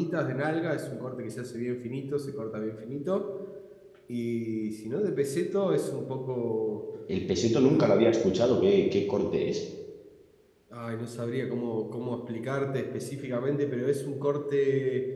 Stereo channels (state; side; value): identical; both; correlation 1.00